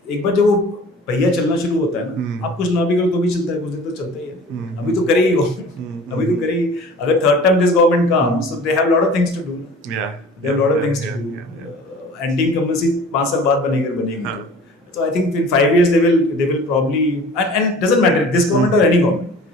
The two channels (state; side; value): normal; both; correlation 0.44